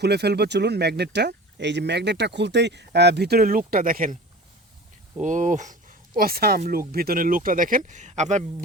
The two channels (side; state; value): both; normal; correlation 0.38